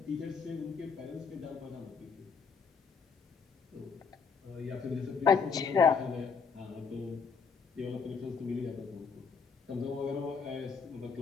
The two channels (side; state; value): right; quieter; 5.6 dB